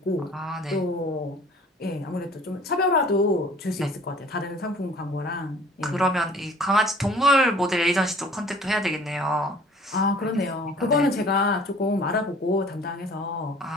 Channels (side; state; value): both; normal; correlation 0.50